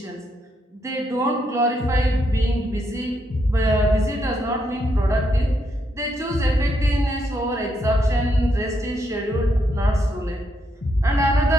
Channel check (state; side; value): normal; both; correlation 0.78